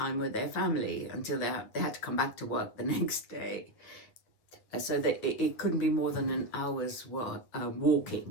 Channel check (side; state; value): right; late; 9.1 ms